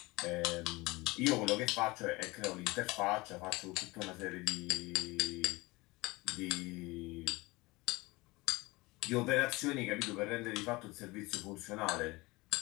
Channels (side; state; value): right; quieter; 22.7 dB